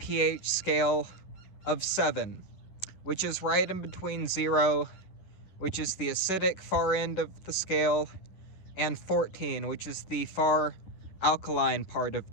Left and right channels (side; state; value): right; late; 10 ms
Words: scale of 7, which is right in between 0, which is the acidic far end of the scale, and 14, which is the far alkaline part of